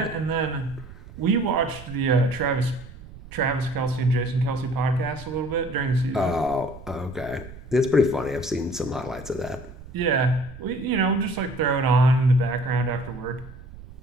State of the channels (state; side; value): noise; right; rumble, 16 dB below the sound